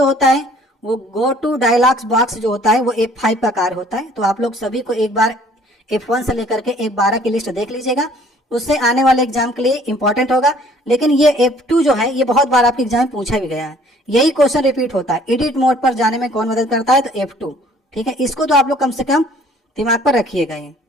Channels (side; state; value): both; normal; correlation 0.56